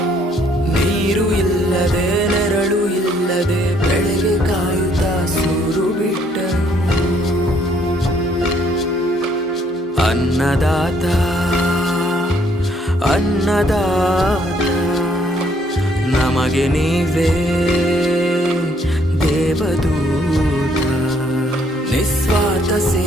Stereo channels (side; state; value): both; normal; correlation 0.66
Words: ನೀರು ಇಲ್ಲದೆ ನೆರಳು ಇಲ್ಲದೆ ಬೆಳೆಗೆ ಕಾಯುತ್ತಾ ಸೂರು ಬಿಟ್ಟನು ಅನ್ನದಾತ ಅನ್ನದಾತ ನಮಗೆ ನೀವೇ ದೇವದೂತ ನಿಸ್ವಾರ್ಥ